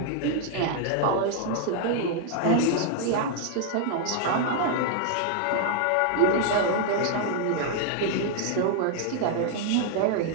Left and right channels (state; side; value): different; both; correlation 0.00